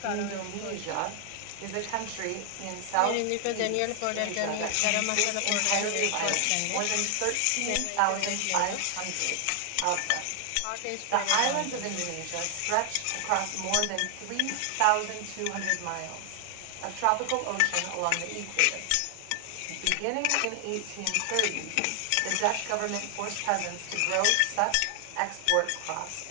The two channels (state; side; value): different; both; correlation 0.00